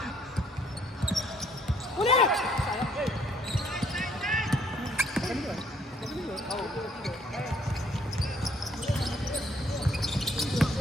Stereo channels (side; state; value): both; normal; correlation 0.64